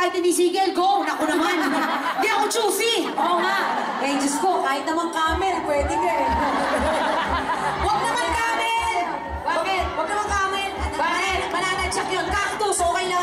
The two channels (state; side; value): identical; both; correlation 1.00